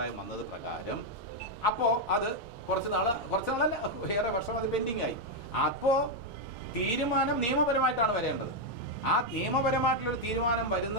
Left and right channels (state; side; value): normal; both; correlation 0.01